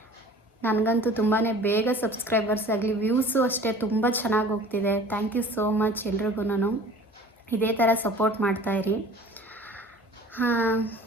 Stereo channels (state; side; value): normal; both; correlation 0.45